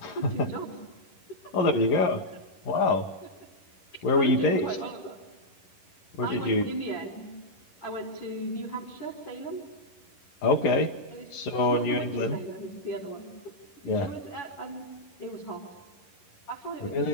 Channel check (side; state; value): right; late; 11 ms